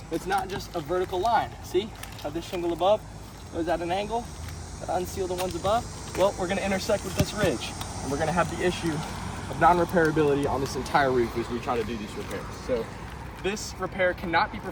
it's not just a vertical line. See how this shingle above goes at an angle? Gotta unseal the ones above. Well, we're gonna intersect with this ridge and we're gonna have the issue of non-repairability on this entire roof as we try to do these repairs. So this repair cannot be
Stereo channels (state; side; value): identical; both; correlation 1.00